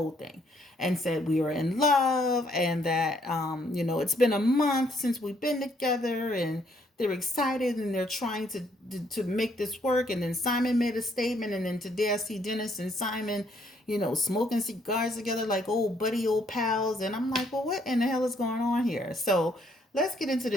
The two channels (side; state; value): both; normal; correlation 0.68